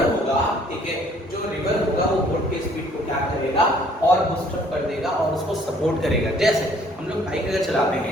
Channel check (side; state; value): both; normal; correlation 0.60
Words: होगा, ठीक है, जो रिवर होगा वो बोट के स्पीड को क्या करेगा, और बूस्ट अप कर देगा और उसको सपोर्ट करेगा। जैसे हम लोग बाइक अगर चलाते